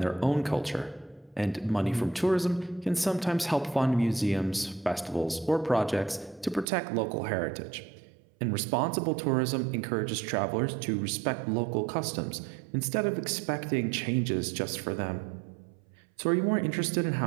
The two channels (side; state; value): left; drops out; at 6.7 s